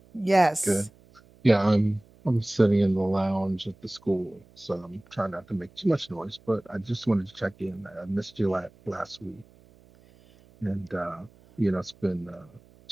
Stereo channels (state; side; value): noise; right; hum, 27 dB below the sound